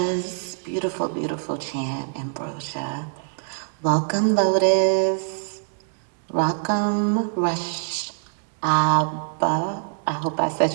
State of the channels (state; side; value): silent; left; digital silence